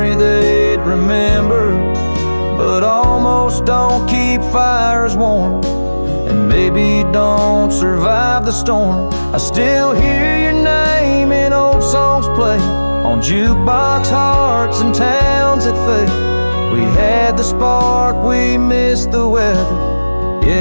they'd remember. But almost don't keep fires warm, and maybe don't survive the storm. I still hear your name in old songs play on jukebox hearts and towns that fade. We had the spark, we missed the weather.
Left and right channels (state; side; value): inverted; both; correlation -1.00